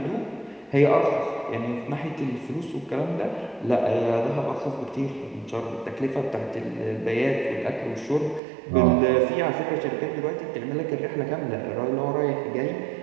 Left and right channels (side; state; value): left; drops out; at 8.4 s